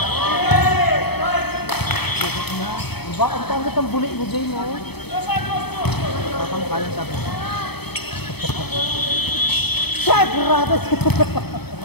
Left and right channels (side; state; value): right; late; 0.97 ms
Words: Ba, ang tangat ang bulik mo, Jay, no? Tatangkalan sabi. Check! Ratas!